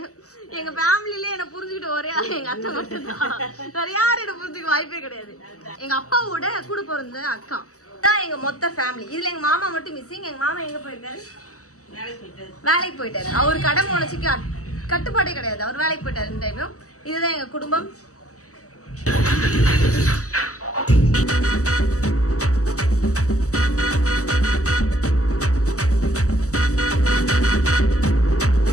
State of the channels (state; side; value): late; right; 0.66 ms